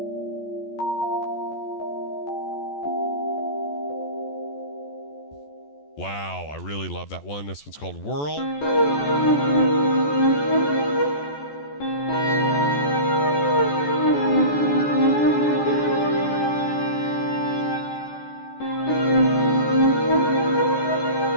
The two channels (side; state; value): right; late; 14 ms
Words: Wow, I really love that one. This one's called Whirl.